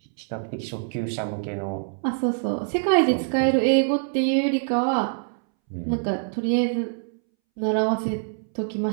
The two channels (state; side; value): silent; left; 62 dB below the other